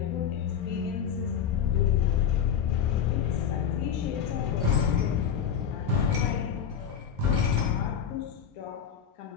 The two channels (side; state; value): right; quieter; 8.2 dB